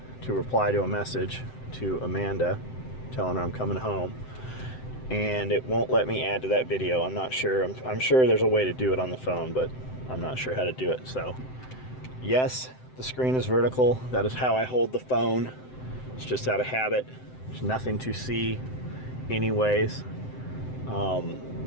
to reply to a message to Amanda telling her I'm coming home, and it won't let me add to that video. I'm not sure. I'm sure there's a way to do it on the phone, but I'm not sure how to do it. So yes, the screen is vertical. That is how I hold the phone. It's just out of habit. There's nothing to see anyways.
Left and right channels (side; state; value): right; late; 7.8 ms